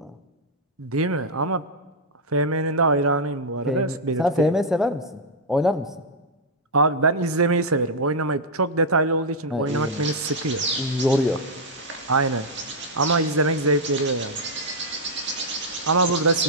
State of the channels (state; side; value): normal; both; correlation -0.03